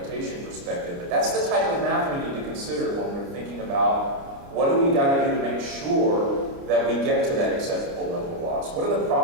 perspective. But that's the type of math we need to consider when we're thinking about what do we got to do to make sure that we get to that acceptable level of loss. What are the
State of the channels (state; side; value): late; left; 29 ms